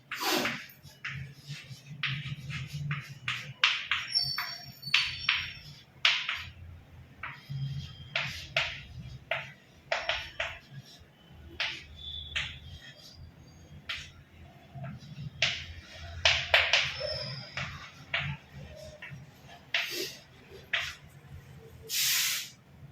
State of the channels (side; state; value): both; identical; correlation 1.00